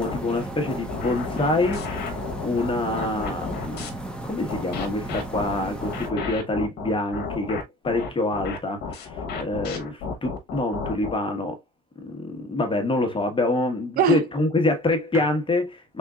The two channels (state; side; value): normal; both; correlation 0.46